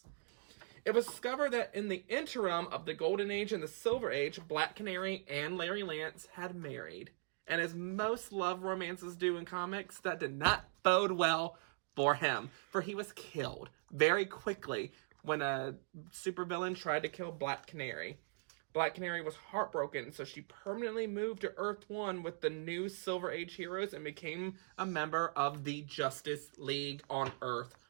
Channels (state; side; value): silent; left; digital silence